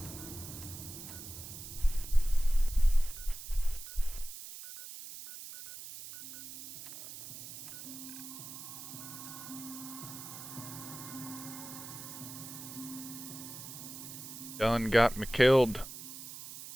Done got me killed.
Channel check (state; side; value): noise; right; hiss, 11 dB below the sound